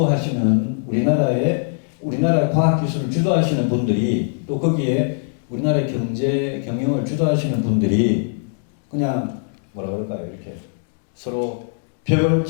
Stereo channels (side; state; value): right; silent; digital silence